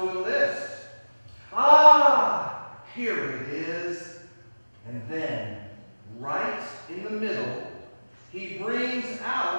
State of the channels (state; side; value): inverted; both; correlation -1.00